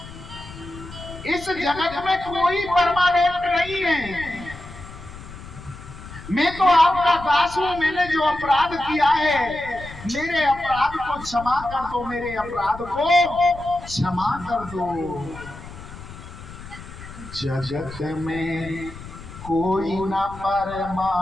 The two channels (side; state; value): left; noise; rumble, 15 dB below the sound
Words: इस जगत में कोई परमानेंट नहीं है। मैं तो आपका दास हूं, मैंने जो अपराध किया है, मेरे अपराध को क्षमा कर दो, मेरे अपराध को क्षमा कर दो। जगत में कोई न